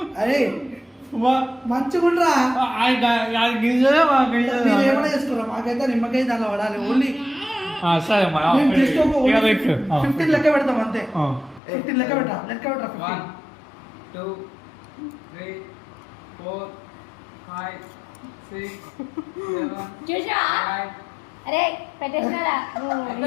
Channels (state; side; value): drops out; right; at 11.6 s